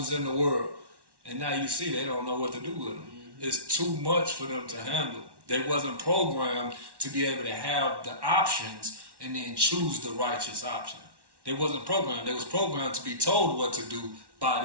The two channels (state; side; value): late; left; 1.1 ms